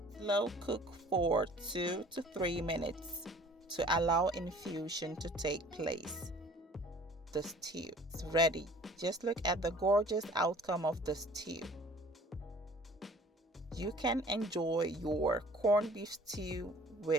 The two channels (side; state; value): both; normal; correlation 0.51